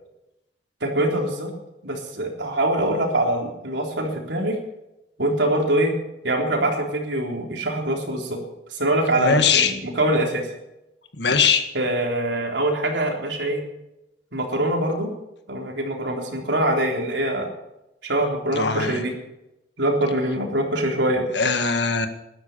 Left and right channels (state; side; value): normal; both; correlation -0.02